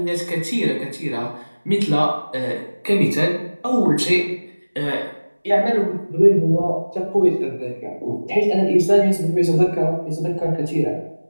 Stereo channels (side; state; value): both; inverted; correlation -1.00